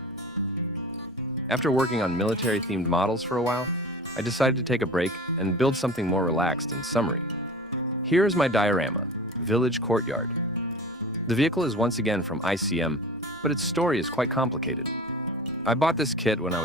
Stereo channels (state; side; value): normal; both; correlation 0.37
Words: After working on military-themed models for a while, I decided to take a break and build something more relaxed and summery. Here is my diorama, Village Courtyard. The vehicle is once again from ICM, but its story is quite complicated. I bought this kit when I